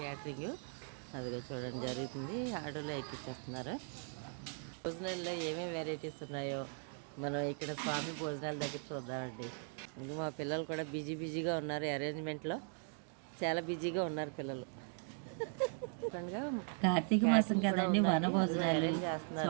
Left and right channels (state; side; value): silent; left; 52 dB below the other